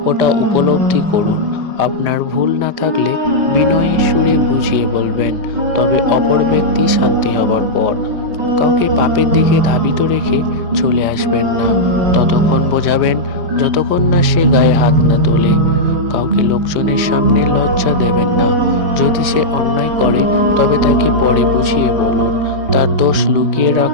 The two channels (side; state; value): left; late; 5.0 ms